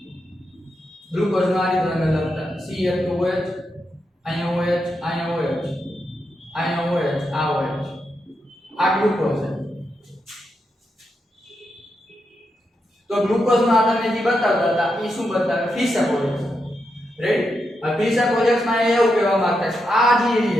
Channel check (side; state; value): both; normal; correlation 0.85